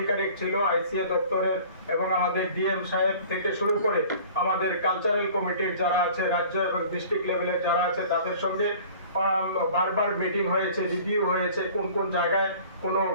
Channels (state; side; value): inverted; both; correlation -0.47